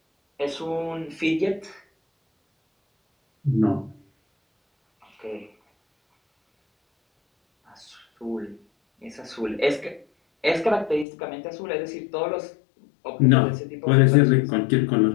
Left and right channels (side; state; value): right; drops out; at 11.1 s